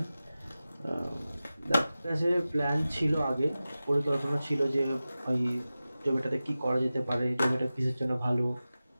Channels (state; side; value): inverted; both; correlation -0.95